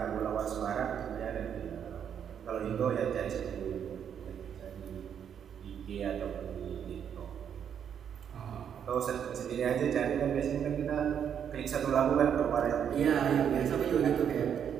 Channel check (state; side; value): quieter; left; 8.4 dB